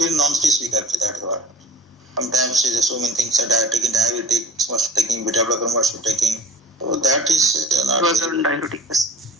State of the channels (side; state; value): both; normal; correlation 0.43